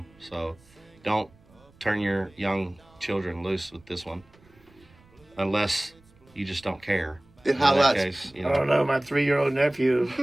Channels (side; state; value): right; noise; rumble, 29 dB below the sound